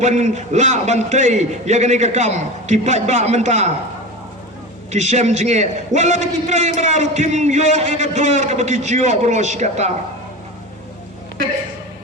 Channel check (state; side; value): normal; both; correlation 0.28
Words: la bantai ya gani kakam kipat ba menta kisem jinge wala kita yang meraru tim yo ega dor kabaki jio bros kata